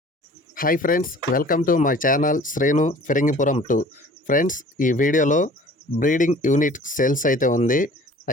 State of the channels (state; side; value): normal; both; correlation 0.48